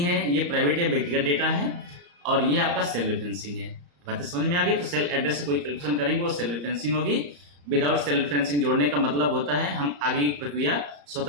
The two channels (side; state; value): left; late; 34 ms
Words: है, ये प्राइवेट या व्यक्तिगत डेटा है और ये आपका सेल रेफरेंसिंग है। बातें समझ में आ गई। तो सेल एड्रेस से कोई कैलकुलेशन करेंगे वो सेल रेफरेंसिंग होगी। विदाउट सेल रेफरेंसिंग जोड़ने का मतलब होता है हम आगे की प्रक्रिया